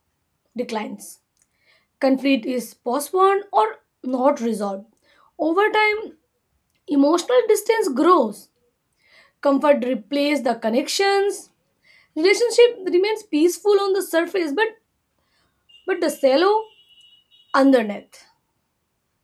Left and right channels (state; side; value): identical; both; correlation 1.00